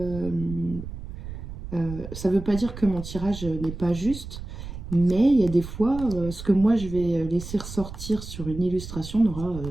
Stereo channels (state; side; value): noise; right; rumble, 10 dB below the sound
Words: ça ne veut pas dire que mon tirage n'est pas juste, mais il y a des fois, ce que moi je vais laisser ressortir sur une illustration n'aura